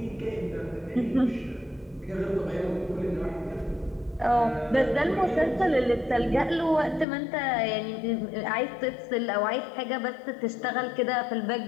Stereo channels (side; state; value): right; drops out; at 7.1 s